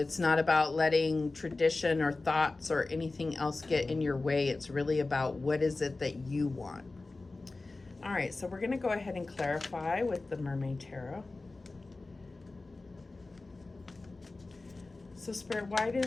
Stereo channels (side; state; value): right; quieter; 3.4 dB